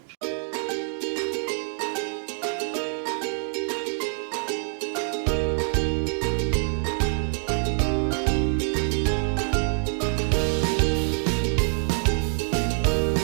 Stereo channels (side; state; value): left; silent; digital silence